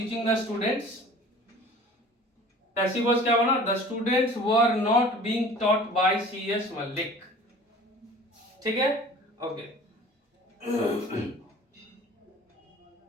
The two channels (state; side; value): normal; both; correlation 0.45